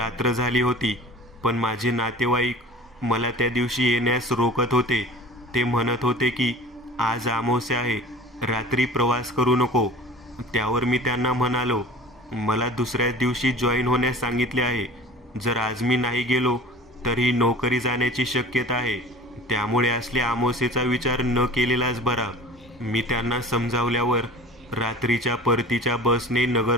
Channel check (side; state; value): both; normal; correlation 0.42